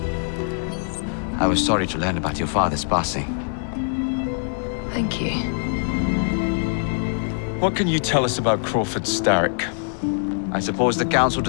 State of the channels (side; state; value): right; silent; 63 dB below the other